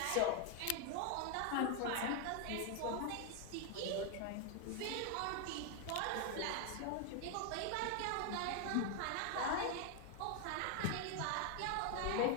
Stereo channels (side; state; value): both; different; correlation 0.01